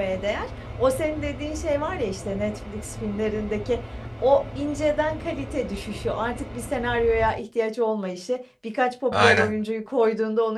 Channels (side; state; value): both; identical; correlation 1.00